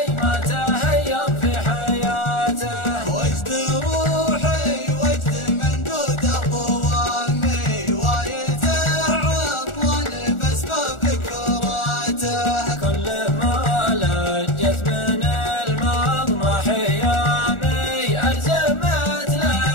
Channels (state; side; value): late; right; 1.4 ms